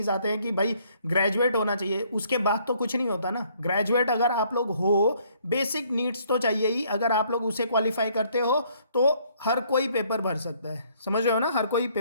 आते हैं कि भाई ग्रेजुएट होना चाहिए, उसके बाद तो कुछ नहीं होता ना। ग्रेजुएट अगर आप लोग हो, बेसिक नीड्स तो चाहिए ही, अगर आप लोग उसे क्वालिफाई करते हो तो हर कोई पेपर भर सकता है, समझ रहे हो ना, हर कोई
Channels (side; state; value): both; inverted; correlation -0.64